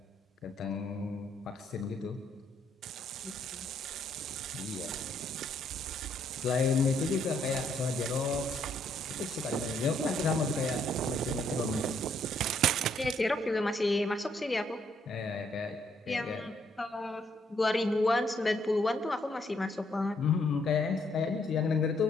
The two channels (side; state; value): both; normal; correlation 0.71